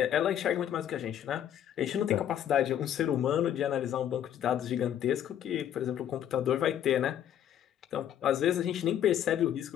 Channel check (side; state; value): right; quieter; 10.4 dB